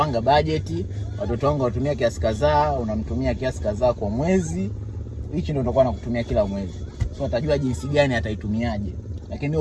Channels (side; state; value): both; identical; correlation 1.00